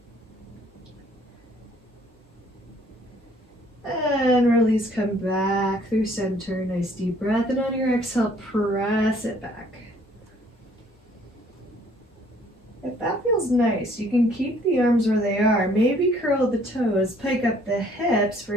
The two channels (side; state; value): both; normal; correlation 0.60